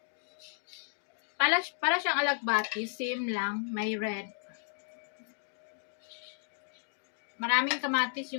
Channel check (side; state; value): right; silent; digital silence